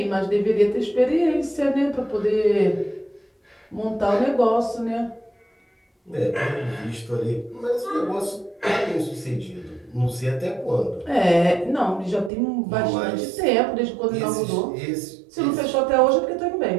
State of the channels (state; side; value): drops out; left; at 12.3 s